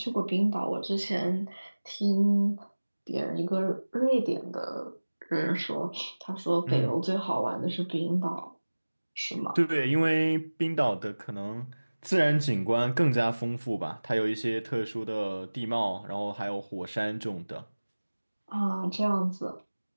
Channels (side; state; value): both; inverted; correlation -1.00